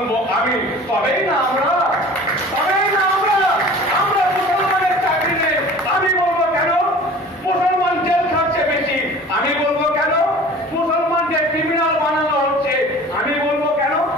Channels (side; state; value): both; normal; correlation 0.43